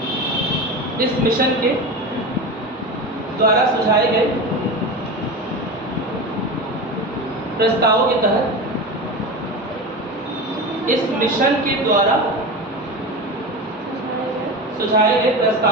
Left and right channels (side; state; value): both; normal; correlation 0.25